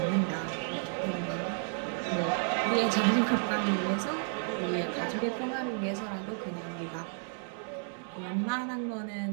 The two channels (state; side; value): silent; left; 56 dB below the other